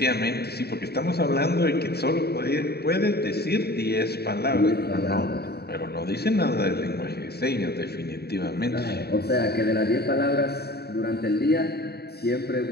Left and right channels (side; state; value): right; late; 0.47 ms